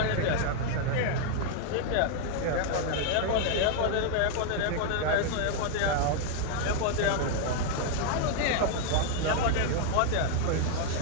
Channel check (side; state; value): both; different; correlation 0.00